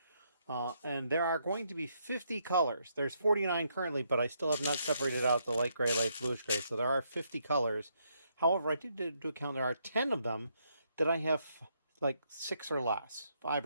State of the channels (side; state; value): both; inverted; correlation -0.75